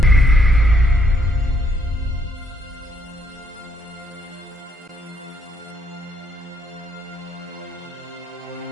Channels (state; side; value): normal; both; correlation 0.71